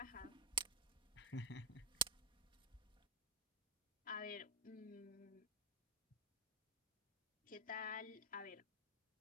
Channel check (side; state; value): both; normal; correlation 0.06